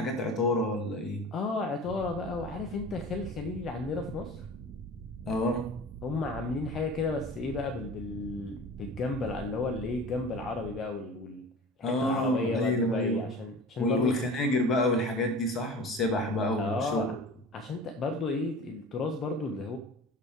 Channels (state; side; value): normal; both; correlation 0.38